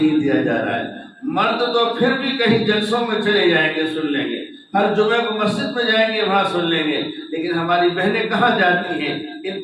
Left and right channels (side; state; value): both; identical; correlation 1.00